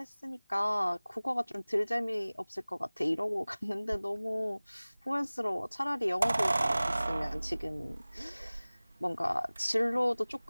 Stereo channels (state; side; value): inverted; both; correlation -0.99